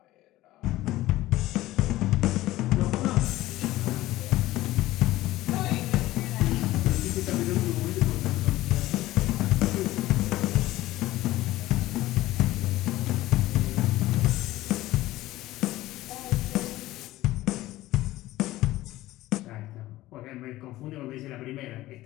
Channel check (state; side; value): quieter; right; 16.6 dB